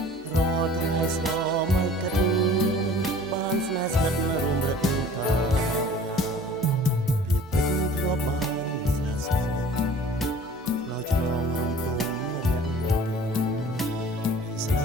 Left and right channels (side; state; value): both; normal; correlation 0.47